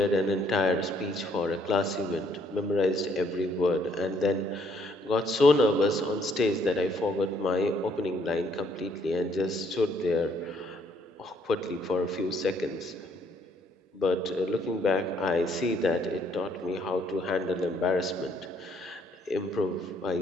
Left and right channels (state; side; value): normal; both; correlation 0.67